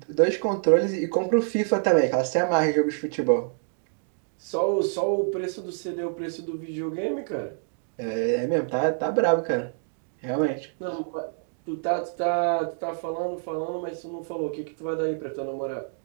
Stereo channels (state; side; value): silent; left; digital silence